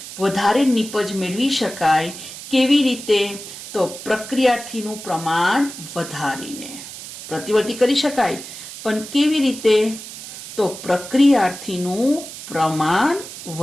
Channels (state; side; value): noise; right; hiss, 12 dB below the sound